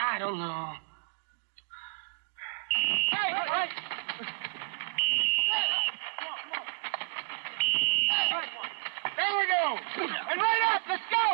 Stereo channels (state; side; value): silent; left; digital silence